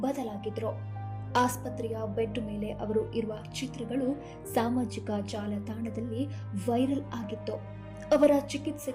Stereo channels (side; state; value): both; identical; correlation 1.00